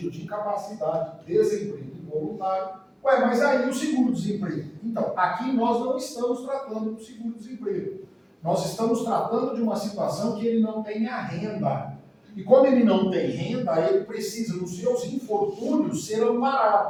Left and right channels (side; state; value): both; identical; correlation 1.00